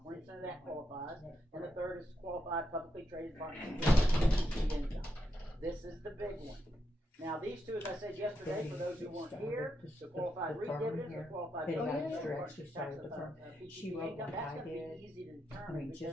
20% of that qualifies. And the third is qualified publicly traded partnership income. This is the big one. Now, these two, as I said yesterday, for those who weren't here, the qualified REIT dividends, the qualified publicly traded partnership tax, She PTP wrote income, like that's I going to did. be easy to I determine mean,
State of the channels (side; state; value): both; normal; correlation 0.83